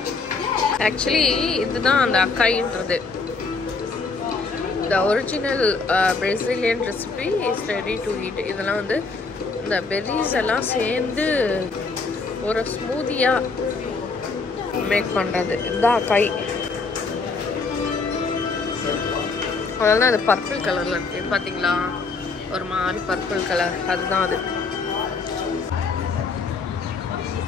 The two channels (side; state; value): right; quieter; 4.2 dB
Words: ஆக்சுவலி இதுதான் அந்த அக்காயின்றது. The original Brazilian recipe is ready to eat. இதெல்லாம் வந்து இந்த பெரிஸ் எல்லாம் சேர்ந்து ஒரு ஸ்மூதியாக மேக் பண்ணுறது. இதுதான் அக்காய். அதனால அது பர்பிள் கலரில் இருக்குது பார்த்தீங்களா, ஒரு மாதிரி பர்பிள் கலர், அதுதான் அது.